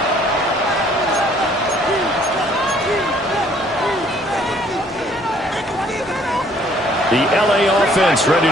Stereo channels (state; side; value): normal; both; correlation 0.61